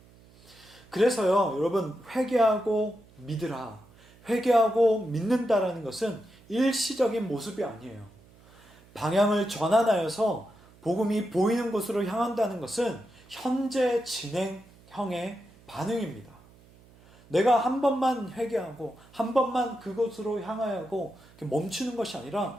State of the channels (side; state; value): right; noise; hum, 26 dB below the sound